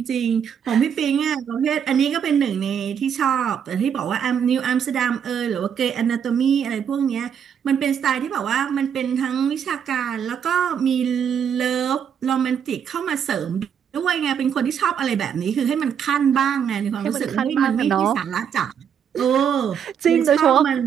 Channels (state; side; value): quieter; left; 8.0 dB